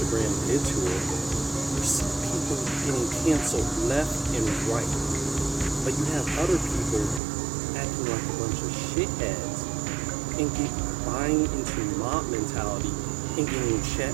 did to her. You see people getting canceled left and right. But you have other people acting like a bunch of shitheads and buying into mob mentality and getting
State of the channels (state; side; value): drops out; left; at 7.2 s